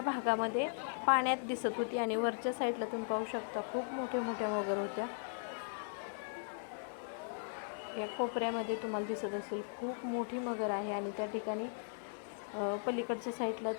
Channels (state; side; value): silent; right; digital silence